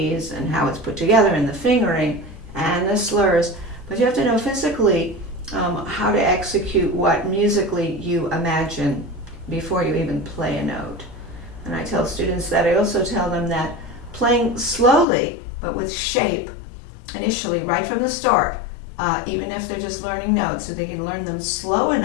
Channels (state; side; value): drops out; right; at 15.1 s